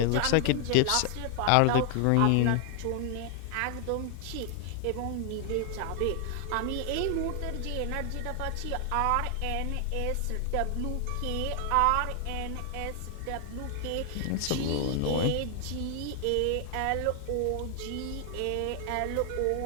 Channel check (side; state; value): both; different; correlation 0.00